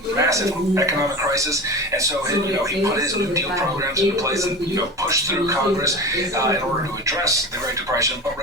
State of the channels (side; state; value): both; normal; correlation 0.30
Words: massive economic crisis. And so, he put his New Deal programs into place and, pushed through Congress in order to address the Great Depression. But